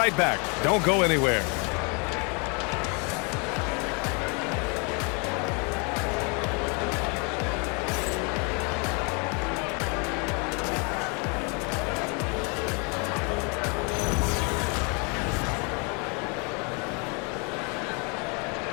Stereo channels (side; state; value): right; quieter; 33.7 dB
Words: back. Don't go anywhere.